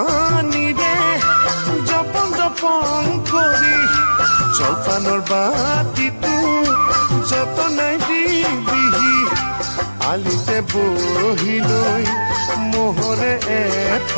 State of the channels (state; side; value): inverted; both; correlation -1.00